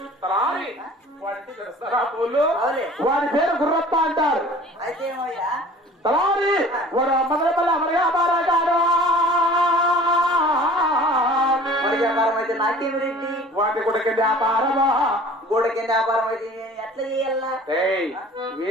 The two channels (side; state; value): both; normal; correlation 0.46